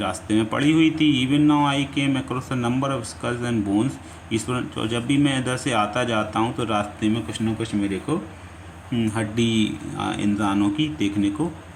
में पड़ी हुई थी। Even now I came across a number of skulls and bones. Ishwar, तो जब भी मैं इधर से आता जाता हूँ तो रास्ते में कुछ ना कुछ मेरे को हड्डी इंसानों की देखने को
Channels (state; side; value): identical; both; correlation 1.00